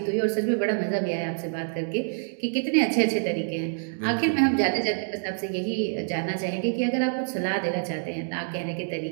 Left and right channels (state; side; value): silent; left; digital silence